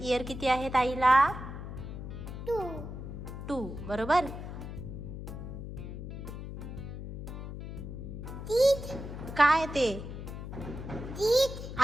किती आहेत आईला? 2 2. बरोबर. teeth काय ते? teeth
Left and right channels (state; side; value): noise; left; hum, 8 dB below the sound